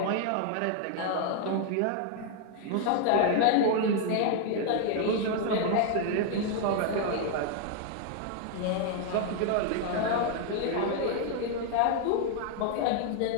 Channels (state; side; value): different; both; correlation 0.00